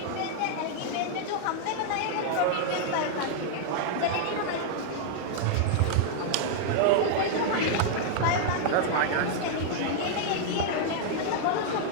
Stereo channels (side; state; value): both; different; correlation -0.01